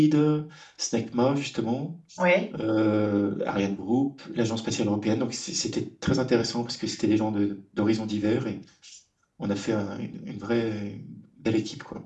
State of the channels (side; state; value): both; identical; correlation 1.00